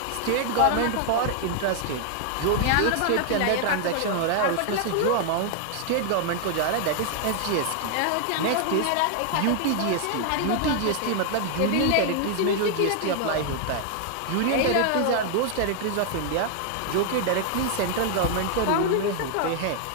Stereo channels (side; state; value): both; different; correlation 0.00